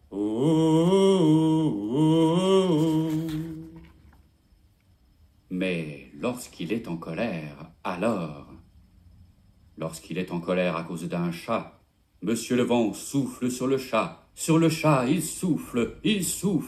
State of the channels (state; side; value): identical; both; correlation 1.00